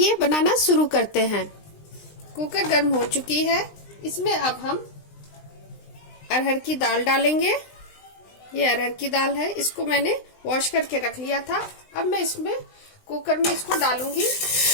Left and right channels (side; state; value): right; late; 20 ms